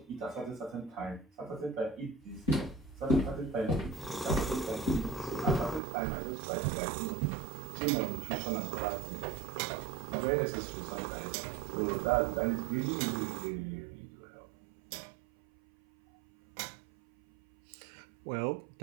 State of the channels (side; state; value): left; drops out; at 5.8 s